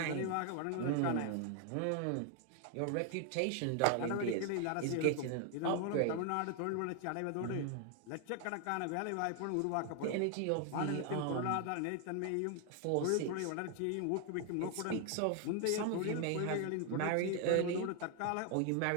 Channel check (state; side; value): different; both; correlation 0.00